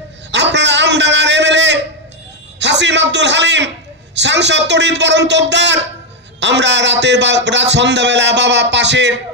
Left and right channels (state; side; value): normal; both; correlation 0.04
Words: আপনারা আমডাঙ্গার এমএলএ হাসিম আব্দুল হালিম, সাংসদ তড়িৎ বরণ তোপদার। আমরা রাত সন্ধ্যাবেলা বাবা পাশের